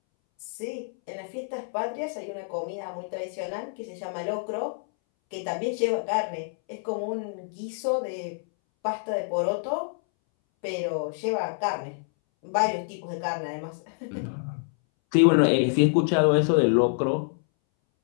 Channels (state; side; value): silent; right; 60 dB below the other